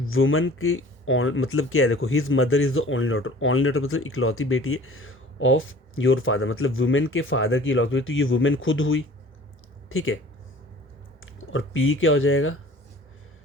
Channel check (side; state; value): both; normal; correlation 0.46